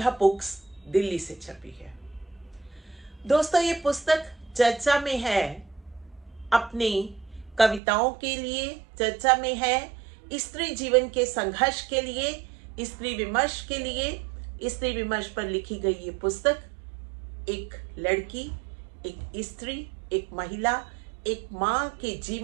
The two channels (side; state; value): left; drops out; at 7.8 s